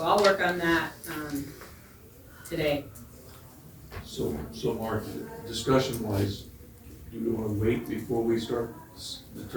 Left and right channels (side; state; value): both; identical; correlation 1.00